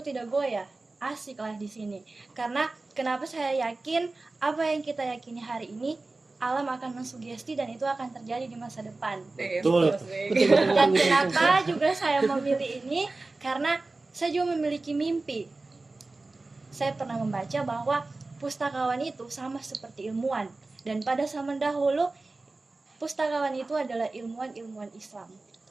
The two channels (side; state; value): left; quieter; 3.3 dB